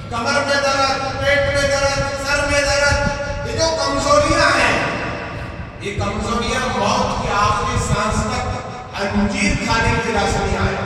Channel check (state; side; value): identical; both; correlation 1.00